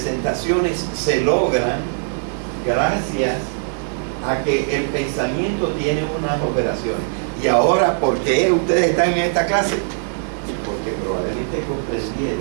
se logran gracias a que el pensamiento tiene unas operaciones. Y ahora, ¿por qué ustedes están en esta clase? Porque probablemente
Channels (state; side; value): silent; left; digital silence